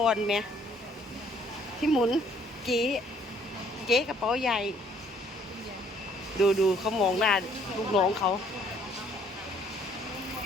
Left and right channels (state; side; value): normal; both; correlation 0.62